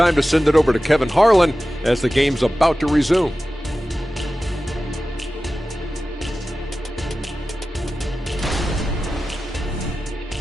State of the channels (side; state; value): both; normal; correlation 0.95